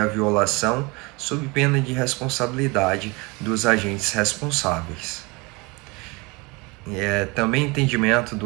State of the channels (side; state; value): left; quieter; 26.4 dB